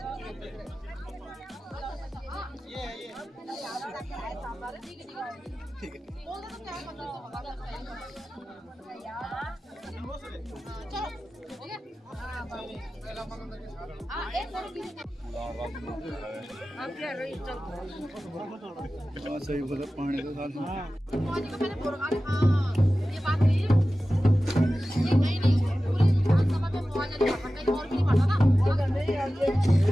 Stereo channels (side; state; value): both; normal; correlation 0.95